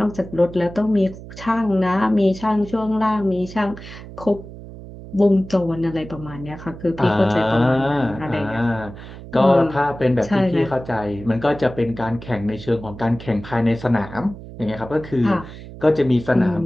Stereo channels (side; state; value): right; noise; hum, 14 dB below the sound